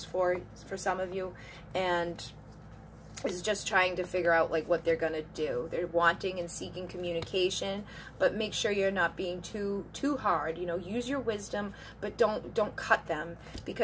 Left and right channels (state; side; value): identical; both; correlation 1.00